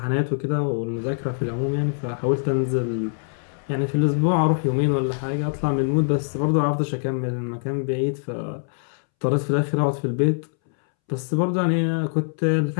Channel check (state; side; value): silent; right; 63 dB below the other